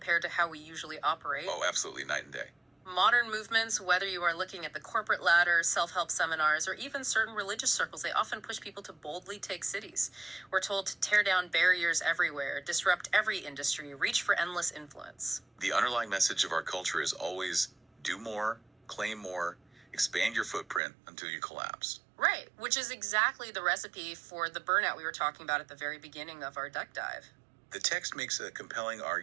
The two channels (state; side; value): drops out; left; at 20.8 s